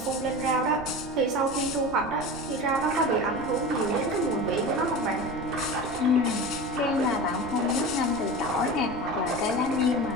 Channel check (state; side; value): noise; right; rumble, 17 dB below the sound